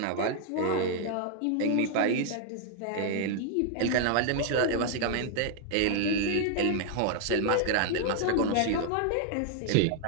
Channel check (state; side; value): different; both; correlation 0.00